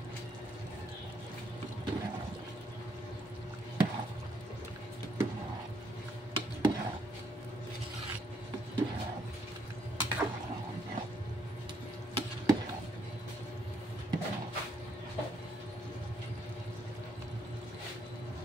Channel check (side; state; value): both; normal; correlation 0.72